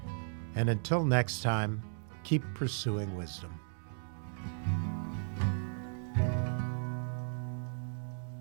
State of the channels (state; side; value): silent; left; digital silence